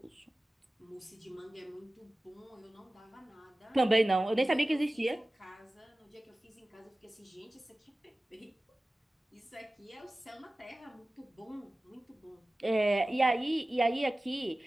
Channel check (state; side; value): normal; both; correlation 0.97